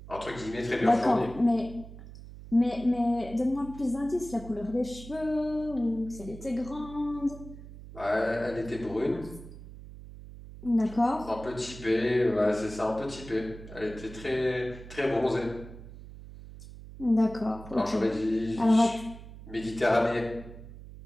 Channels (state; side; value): noise; right; hum, 15 dB below the sound